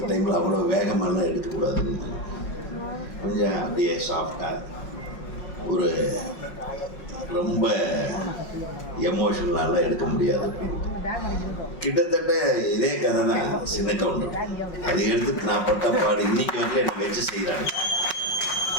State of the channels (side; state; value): right; late; 5.5 ms